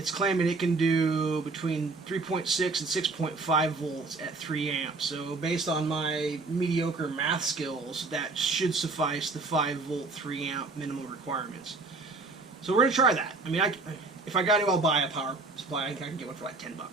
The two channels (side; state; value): left; quieter; 3.7 dB